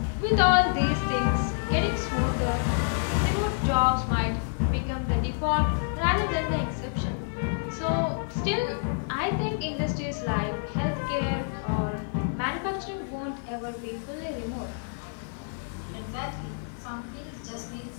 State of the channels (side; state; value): right; silent; digital silence